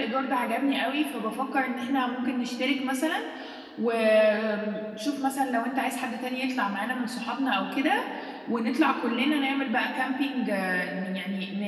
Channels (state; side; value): identical; both; correlation 1.00